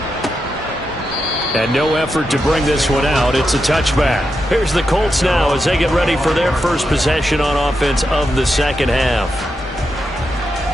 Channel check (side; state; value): both; normal; correlation 0.86